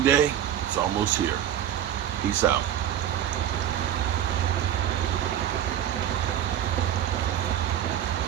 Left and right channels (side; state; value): left; quieter; 10.5 dB